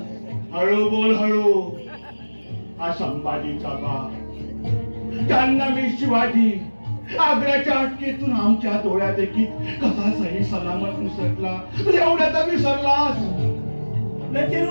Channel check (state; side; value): inverted; both; correlation -1.00